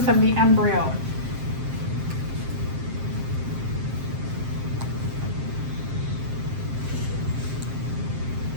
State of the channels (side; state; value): left; late; 7.6 ms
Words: of the embryo.